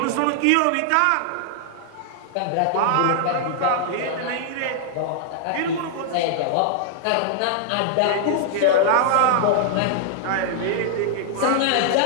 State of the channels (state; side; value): different; both; correlation -0.01